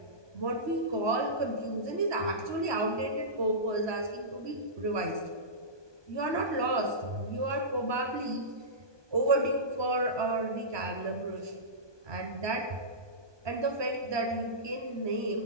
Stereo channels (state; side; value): late; left; 1.2 ms